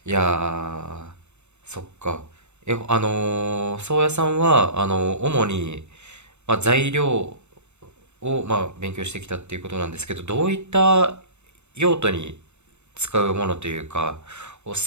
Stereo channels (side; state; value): left; late; 0.82 ms